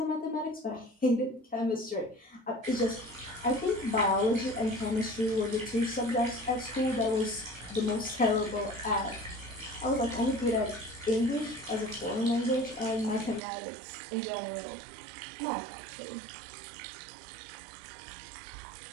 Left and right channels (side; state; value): left; drops out; at 13.4 s